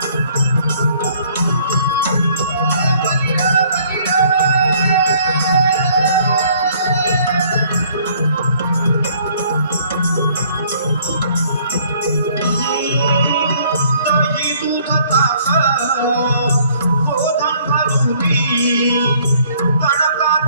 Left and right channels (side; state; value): both; inverted; correlation -0.60